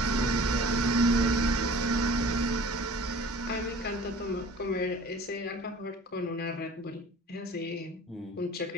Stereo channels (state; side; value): normal; both; correlation 0.45